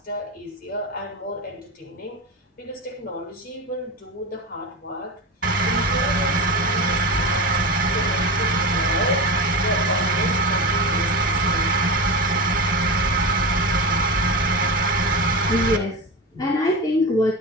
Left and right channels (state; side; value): normal; both; correlation 0.23